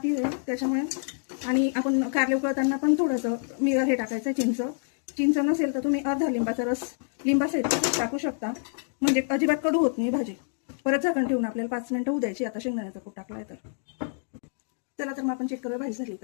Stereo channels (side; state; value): right; silent; digital silence